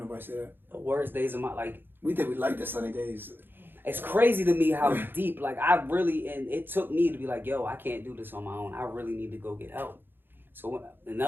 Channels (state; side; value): late; left; 0.099 ms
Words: say that. The worst days of my, like... We think we like the sunny days. It's crazy to me how deep, like, and it took me to be like, yo, I can't do this on my own. I really need to go get help. So